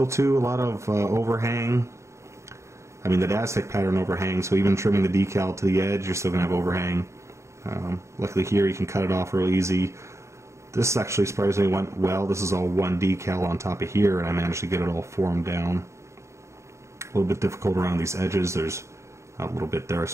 too, a lot of overhang. I mean, the Aztec pattern overhangs, so even trimming the decal to the edge, you're still going to have overhang. Luckily here you can cut it off real easy. This actually surprisingly went well. This is all one decal on top of here, and I managed to get it all formed down. A little bit difficult around these edges. There's a little bit there I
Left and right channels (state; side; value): late; left; 0.14 ms